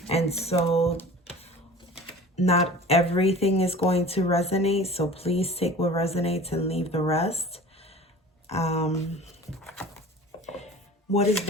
And so not everything is going to resonate. So please take what resonates and leave the rest. What is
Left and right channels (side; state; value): both; normal; correlation 0.42